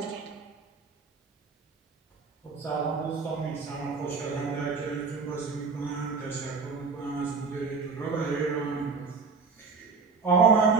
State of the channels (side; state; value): left; quieter; 4.8 dB